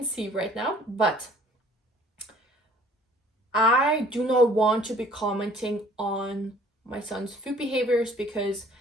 see right now, but I do not want to be commenting on my son's food behaviors, because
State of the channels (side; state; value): both; normal; correlation 0.54